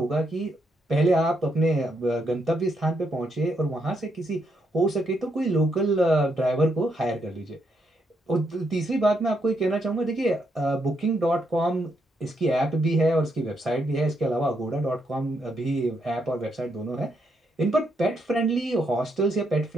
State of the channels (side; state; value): both; normal; correlation 0.78